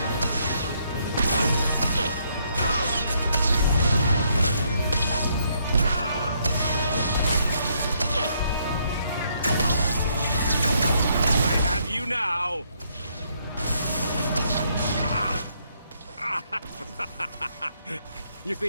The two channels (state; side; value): inverted; both; correlation -0.72